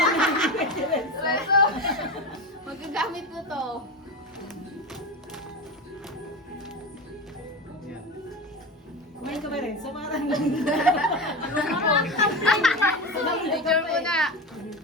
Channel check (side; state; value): both; normal; correlation 0.23